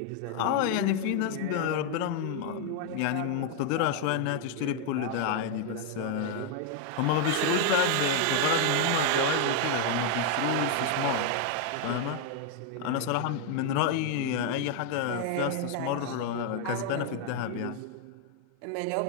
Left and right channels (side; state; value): both; different; correlation 0.00